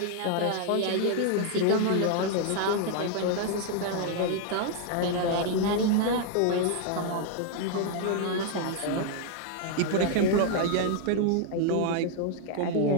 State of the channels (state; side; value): different; both; correlation 0.00